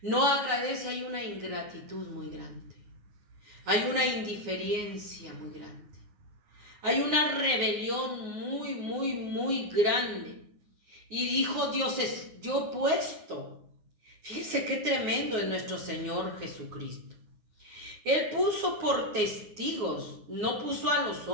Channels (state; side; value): late; left; 9.6 ms